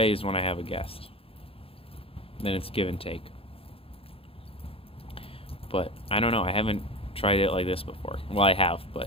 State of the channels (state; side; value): late; right; 0.27 ms